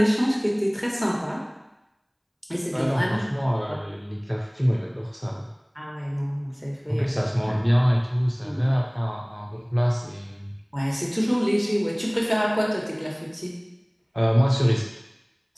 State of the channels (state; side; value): identical; both; correlation 1.00